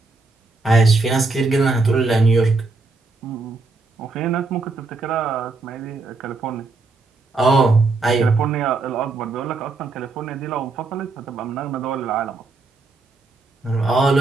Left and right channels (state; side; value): quieter; left; 3.7 dB